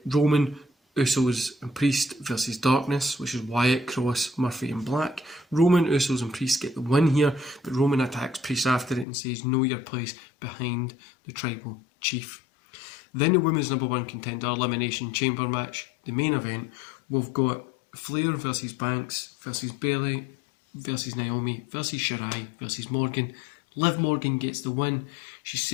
Roman, Usos and Priest versus Darkness, which is Wyatt, Cross, Murphy and Black. Roman, Usos and Priest get the win here, but Roman attacks Priest after it and says, know your place behind the tribal chief. Then the women's number one contender elimination chamber match, the main event. We've got Flair versus Banks versus Bayley versus Naomi versus Shirai versus Morgan. Liv Morgan gets the win. She's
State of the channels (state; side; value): drops out; right; at 9.1 s